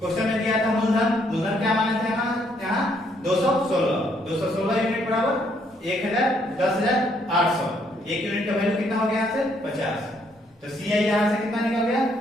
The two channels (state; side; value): normal; both; correlation 0.70